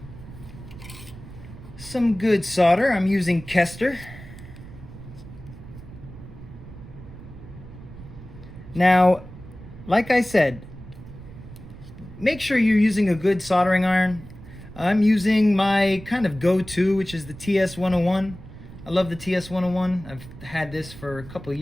solder. I'm using Kester. Now, like I said, make sure you're using a good soldering iron. I'm using my kind of go-to, which is the TS101. I love the TS101. I've had this for a couple of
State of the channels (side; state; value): right; noise; rumble, 16 dB below the sound